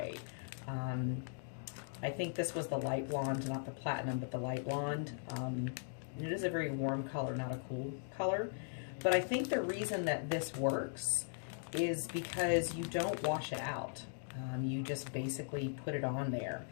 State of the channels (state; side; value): silent; right; digital silence